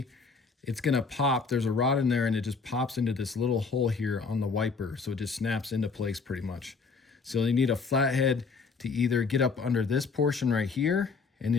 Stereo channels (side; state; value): right; quieter; 4.8 dB